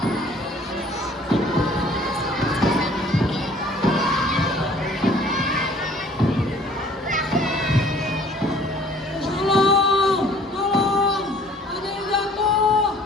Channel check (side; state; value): both; normal; correlation 0.54